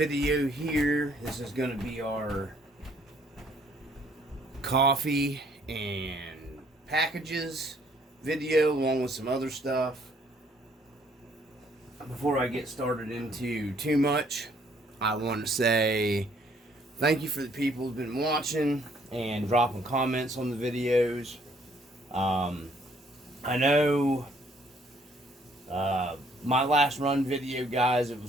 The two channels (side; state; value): both; normal; correlation 0.64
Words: here. This is going to be our coffee and packages video along with some other stuff. Before I get started into too much, I want to say thank you for the people who've been watching and dropping comments on the videos. I know my last run video, guys, it